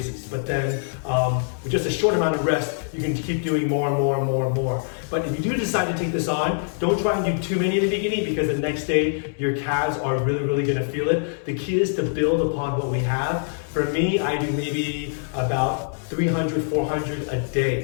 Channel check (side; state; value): right; silent; digital silence